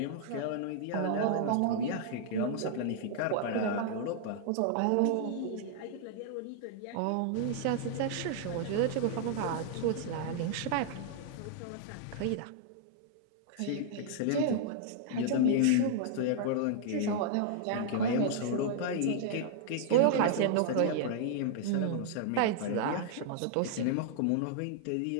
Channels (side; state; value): both; different; correlation -0.01